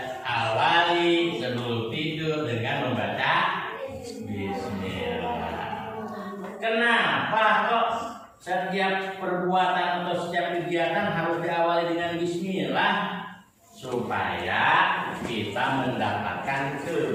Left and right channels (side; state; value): both; identical; correlation 1.00